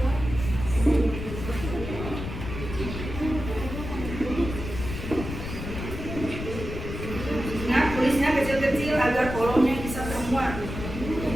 Ingat, tulisnya kecil-kecil agar kolomnya bisa termuat.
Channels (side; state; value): left; noise; rumble, 7 dB below the sound